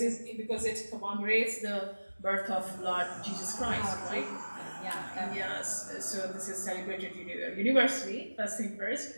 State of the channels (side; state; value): both; inverted; correlation -1.00